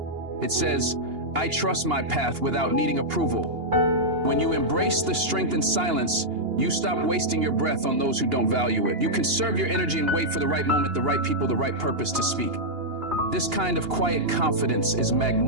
It says, "I trust my path," without needing approval. When you embrace the strength in silence, you stop wasting your breath on those who don't value it. You conserve your energy and wait for the right moment, the right people, the right purpose to speak. This kind of quiet confidence is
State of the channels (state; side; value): late; left; 2.8 ms